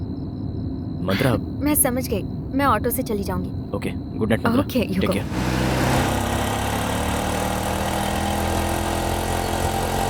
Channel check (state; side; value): identical; both; correlation 1.00